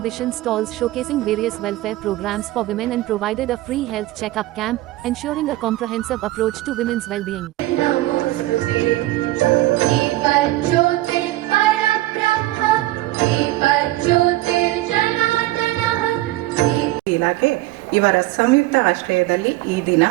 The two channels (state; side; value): quieter; left; 17.2 dB